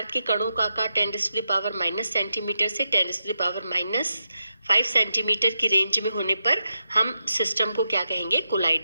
के कणों का आकार 10⁻⁻⁻ सेंटीमीटर से 10⁻⁻5 सेंटीमीटर की रेंज में होने पर हम सिस्टम को क्या कहेंगे,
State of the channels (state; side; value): inverted; both; correlation -0.86